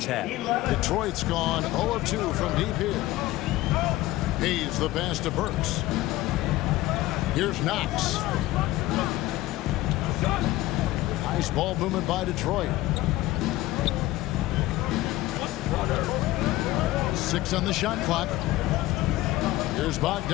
had. Detroit's gone 0 of 2 from deep here. Hayes the pass to Burks. Here's Knox. Nice ball movement by Detroit. 6 on the shot clock. Here's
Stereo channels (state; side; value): quieter; right; 17.0 dB